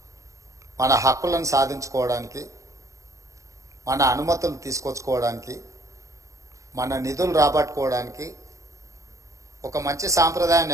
మన హక్కులను సాధించుకోవడానికి, మన అనుమతులు తీసుకొచ్చుకోవడానికి, మన నిధులు రాబట్టుకోవడానికి, ఒక మంచి సాంప్రదాయం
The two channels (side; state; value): left; late; 0.15 ms